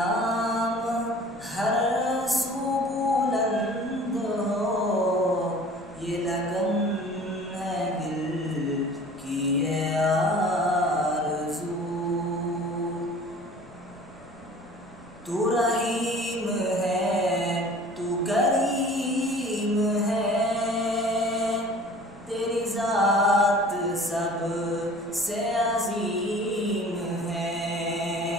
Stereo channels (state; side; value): noise; left; rumble, 26 dB below the sound